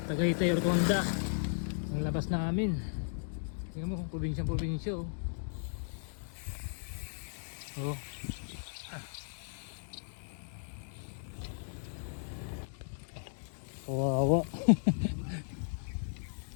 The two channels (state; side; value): silent; right; digital silence